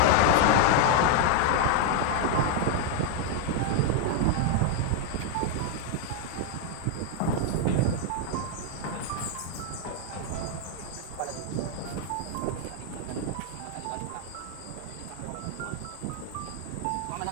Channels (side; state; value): both; different; correlation 0.00